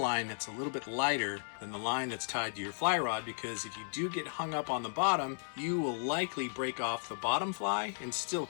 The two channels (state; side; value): silent; right; digital silence